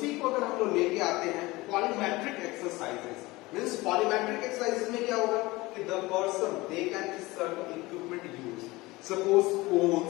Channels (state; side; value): quieter; right; 21.1 dB